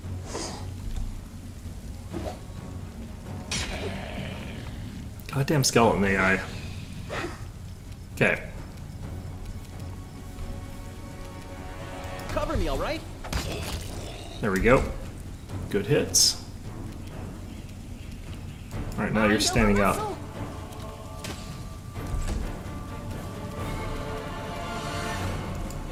Goddamn skeleton AI. Okay. Cover me, all right? There we go. Good hits. Alright, now you're standing up.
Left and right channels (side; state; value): both; identical; correlation 1.00